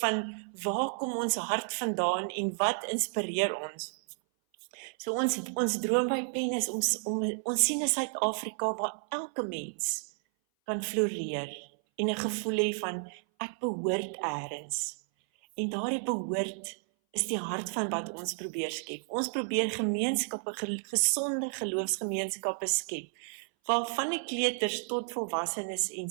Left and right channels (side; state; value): left; silent; 57 dB below the other